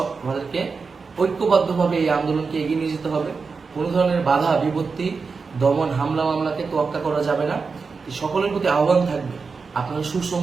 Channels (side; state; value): left; quieter; 4.8 dB